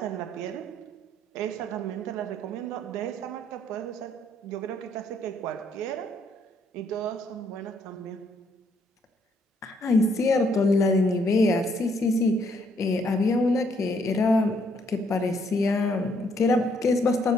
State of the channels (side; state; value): both; normal; correlation 0.70